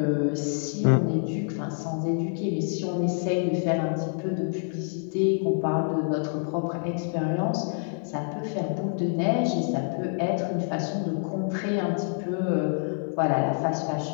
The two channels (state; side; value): silent; right; 60 dB below the other